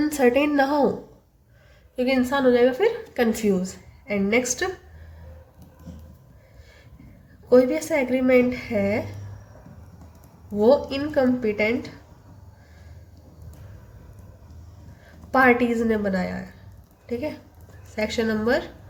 ना हो, क्योंकि इंसान हो जाएगा फिर कंफ्यूज। एंड नेक्स्ट, कोई भी ऐसा एग्रीमेंट है वो इनकम्पिटेंट पार्टीज ने बनाया है। ठीक है, सेक्शन नंबर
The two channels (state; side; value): identical; both; correlation 1.00